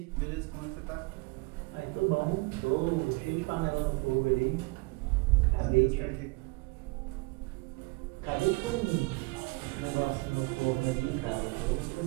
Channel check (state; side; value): quieter; left; 26.3 dB